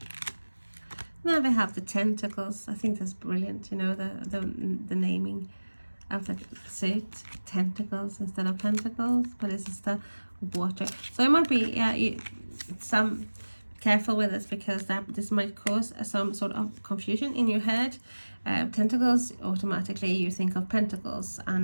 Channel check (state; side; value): inverted; both; correlation -1.00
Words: Now we have the tentacles. I think that's brilliant, you know, the naming of the suit. Tentacles instead of pentacles, but this is the water. So it might be, yeah, some careful with this, because this might cause some sort of confusion in your head. Tentacles, automatically you think of pentacles,